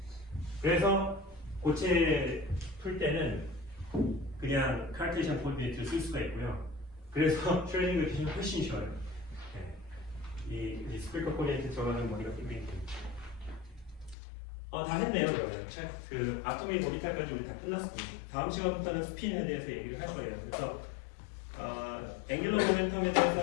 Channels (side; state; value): right; drops out; at 14.2 s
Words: 그래서 고체 풀 때는 그냥 카르테시안 코디네이트를 쓸 수가 있고요. 그래서 슈레딩거 캐시는 훨씬 쉬워요. 이 스피커 코디네이트 들어가는 머리가 굉장히 됩니다. 다 했네요. 그러면 그 아토미 오비탈까지 우리 다 끝났습니다. 다음 시간부터는 스핀에 대해서 얘기를 할 거예요. 그래서 앵귤러 모멘텀에